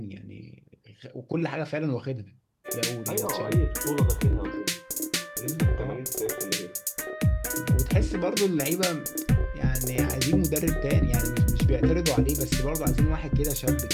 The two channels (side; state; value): both; identical; correlation 1.00